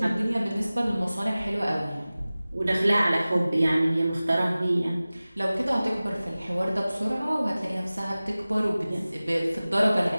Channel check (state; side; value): inverted; both; correlation -0.97